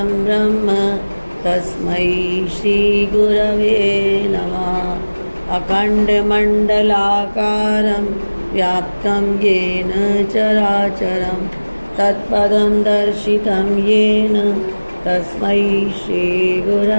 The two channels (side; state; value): both; inverted; correlation -1.00